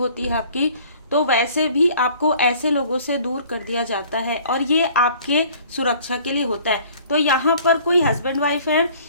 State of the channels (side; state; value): both; inverted; correlation -0.52